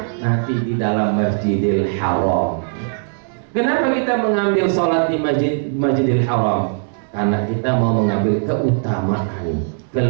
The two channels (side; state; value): left; silent; 61 dB below the other